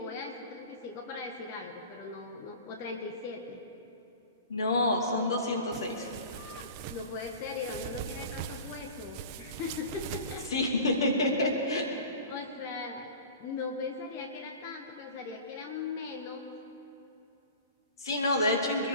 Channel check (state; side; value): inverted; both; correlation -0.39